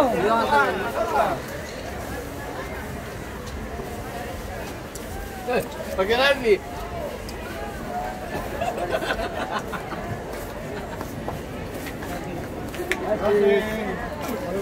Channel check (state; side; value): identical; both; correlation 1.00